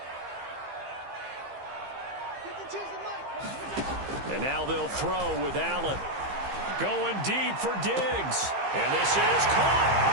And now they'll throw with Allen. Going deep for Diggs. And this is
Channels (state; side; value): late; left; 15 ms